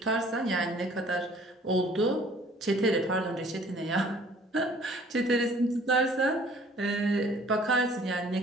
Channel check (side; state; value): both; normal; correlation 0.54